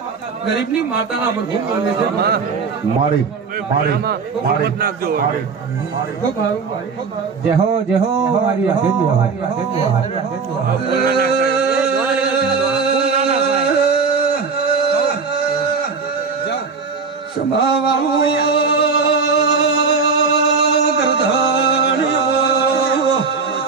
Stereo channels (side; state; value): left; quieter; 5.0 dB